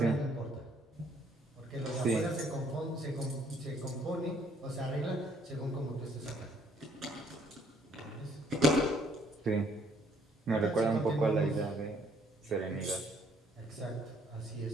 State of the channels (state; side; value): normal; both; correlation 0.64